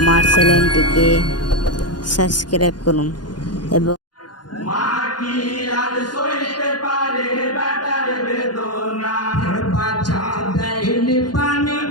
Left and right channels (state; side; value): late; right; 0.70 ms